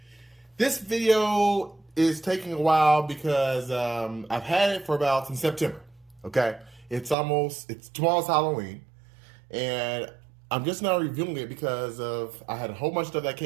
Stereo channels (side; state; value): left; drops out; at 7.2 s